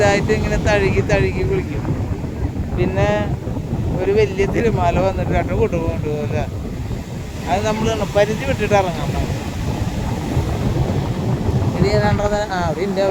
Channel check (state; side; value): identical; both; correlation 1.00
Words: ഇങ്ങനെ തഴുകി വിളിക്കും. പിന്നെ ഒരു വലിയ തിരുമാല വന്നിട്ട് രണ്ട് കൊണ്ടുപോകില്ല. അത് നമ്മൾ പരിധി വിട്ടിട്ട് ഇറങ്ങാൻ പാടില്ല. ഇത് ഏതാണ്ടത്